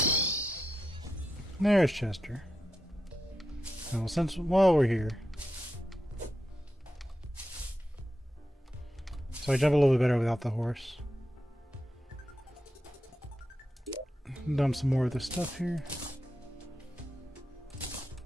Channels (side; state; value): both; normal; correlation 0.88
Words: There's Chester. Well, while we're here. So I jump a little bit better without the horse. Dump some more of this stuff here.